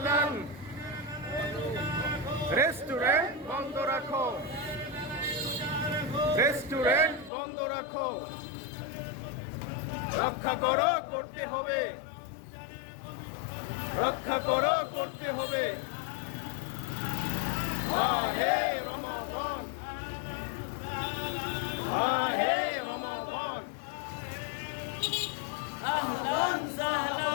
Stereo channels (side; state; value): right; drops out; at 7.3 s